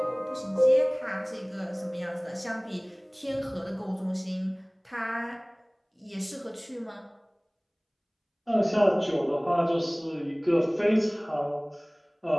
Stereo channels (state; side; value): identical; both; correlation 1.00